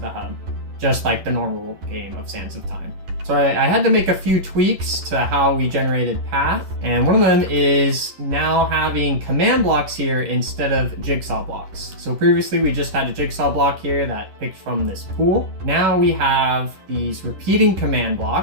the hub, just like the normal game of Sands of Time. So I had to make a few tweaks to how we generated path, and one of them is now having command blocks here instead of jigsaw blocks. So previously we just had a jigsaw block here that picked from this pool. Now we have these repeating command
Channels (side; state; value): left; late; 11 ms